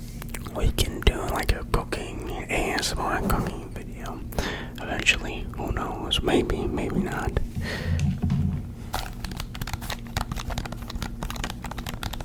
we can do like a cooking ASMR cooking video eventually. Who knows? Maybe not.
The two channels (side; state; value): both; identical; correlation 1.00